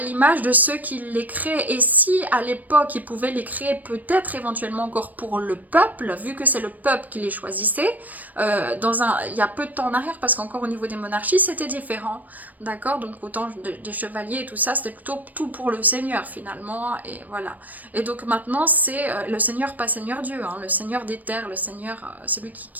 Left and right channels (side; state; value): left; late; 0.081 ms